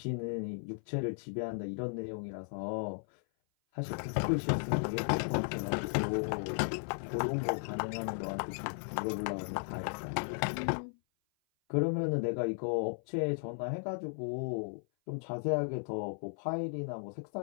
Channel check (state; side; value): silent; right; 54 dB below the other